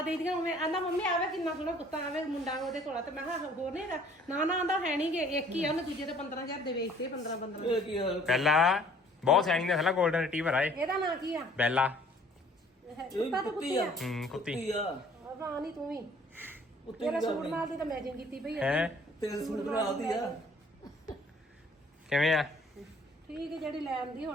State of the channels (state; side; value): normal; both; correlation 0.56